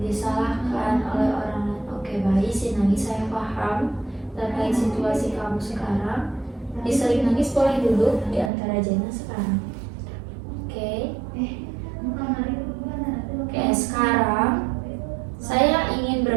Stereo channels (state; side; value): drops out; left; at 8.5 s